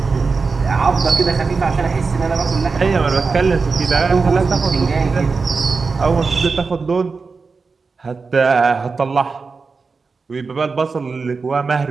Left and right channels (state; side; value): quieter; left; 4.5 dB